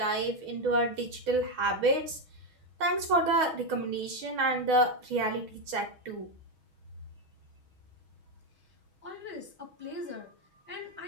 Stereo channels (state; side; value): late; left; 6.3 ms